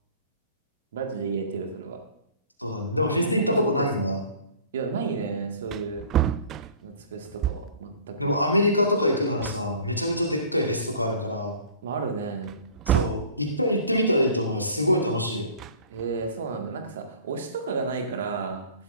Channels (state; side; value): inverted; both; correlation -0.47